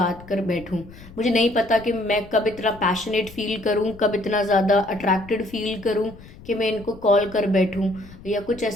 कर बैठूं। मुझे नहीं पता कि मैं कब इतना पैशनेट फील करूं, कब इतना ज़्यादा अट्रैक्टेड फील करूं कि मैं इनको कॉल कर बैठूं या कुछ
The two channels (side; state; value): left; noise; rumble, 19 dB below the sound